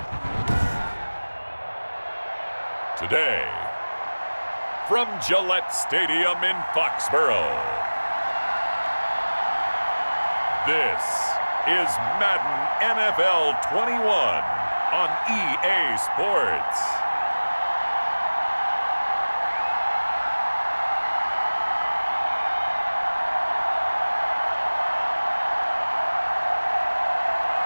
Today, from Gillette Stadium in Foxborough, this is Madden NFL 21 on EA Sports.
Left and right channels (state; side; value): inverted; both; correlation -1.00